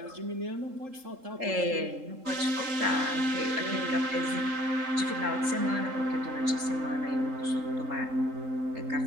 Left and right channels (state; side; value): late; left; 3.8 ms